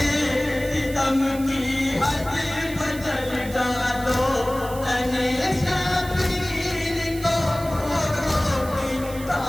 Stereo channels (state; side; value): noise; right; hiss, 15 dB below the sound